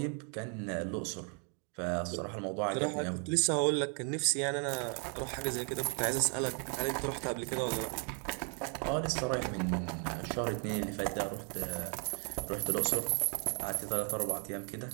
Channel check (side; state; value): left; quieter; 39.7 dB